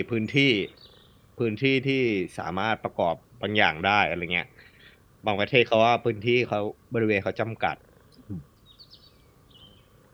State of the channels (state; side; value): identical; both; correlation 1.00